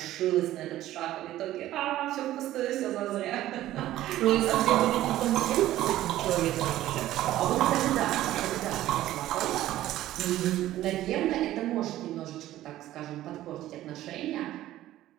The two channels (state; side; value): quieter; left; 14.3 dB